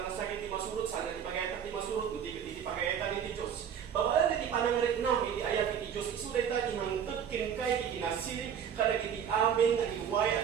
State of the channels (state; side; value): quieter; left; 8.3 dB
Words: nasakit iti masunod, saan nga iti pagayatan iti masunod, iti pagayatan iti Diyos. Babalan iti panangarik nam, iti ayat iti Diyos, isuday ta iti mangtod kinkay, iti nasirip, kadag iti amin nga iway